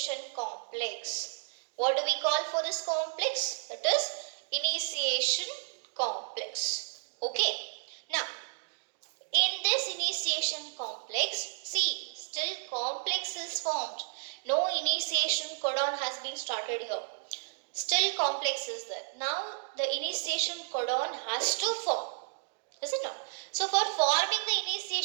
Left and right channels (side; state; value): left; silent; digital silence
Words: complex. What do we call for this complex? That is initiation complex. Now, in this initiation complex, see, still complex is formed. No initiation codon has been started here. Still complex is there. Now, the initiation codon has to form. Is it not? So, for forming the